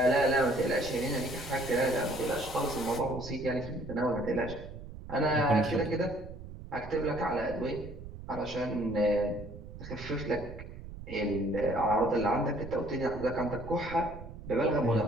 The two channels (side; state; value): right; noise; rumble, 13 dB below the sound